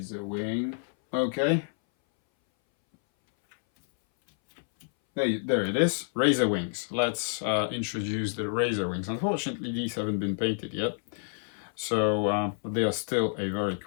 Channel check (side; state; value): right; silent; 59 dB below the other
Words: Okay. There it is. Razorwings. Let's introduce the razorwings. Unfortunately, these haven't been painted yet. So they are still a very